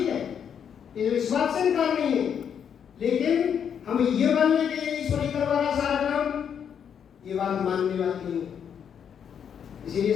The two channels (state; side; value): quieter; right; 8.0 dB